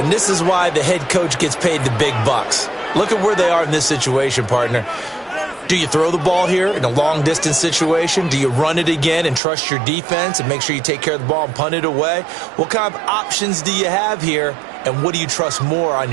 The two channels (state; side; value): drops out; left; at 9.4 s